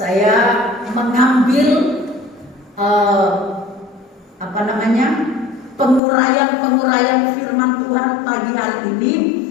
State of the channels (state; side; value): drops out; right; at 6.0 s